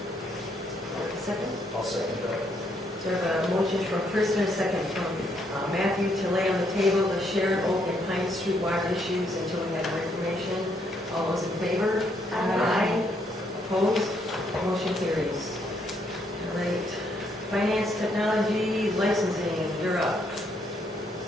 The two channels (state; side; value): normal; both; correlation 0.72